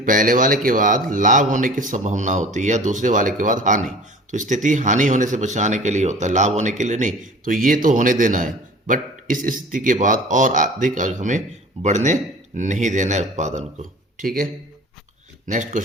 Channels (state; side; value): normal; both; correlation 0.43